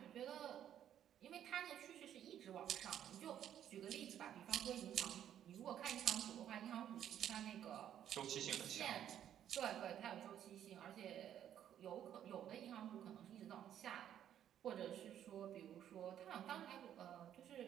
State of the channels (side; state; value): left; quieter; 10.4 dB